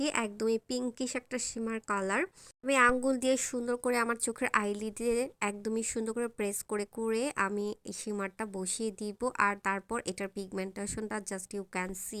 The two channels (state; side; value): identical; both; correlation 1.00